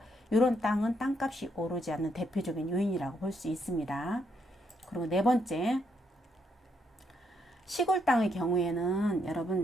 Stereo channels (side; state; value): both; normal; correlation 0.75